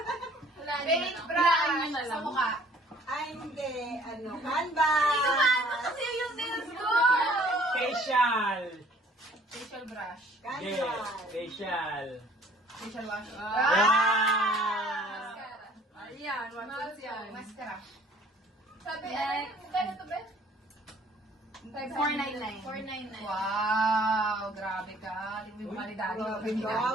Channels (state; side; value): normal; both; correlation 0.56